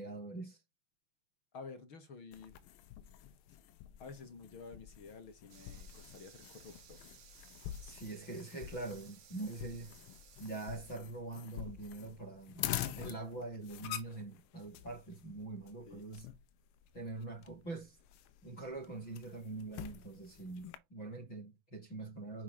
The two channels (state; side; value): late; right; 6.5 ms